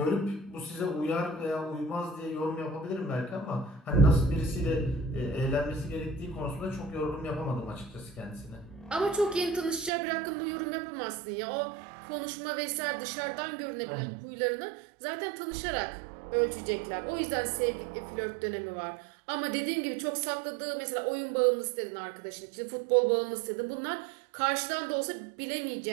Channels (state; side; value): drops out; left; at 9.9 s